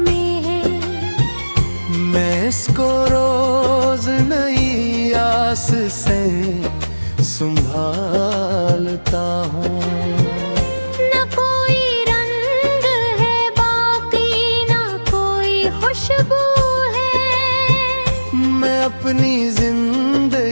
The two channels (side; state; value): both; inverted; correlation -1.00